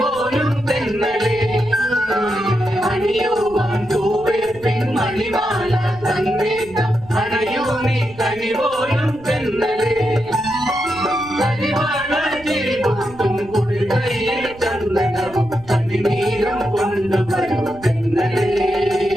തെന്നലേ അണിയുവാൻ തൂവേ പെൺമണിമാല തന്നേക്കാം അണയോ നീ കനിപോലും തെന്നലേ കരിവാള ചിരിപൊട്ടും കുളികയിൽ ചന്ദനവും കണിനീരം കൊണ്ടുവരും തെന്നലേ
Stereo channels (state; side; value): noise; right; rumble, 21 dB below the sound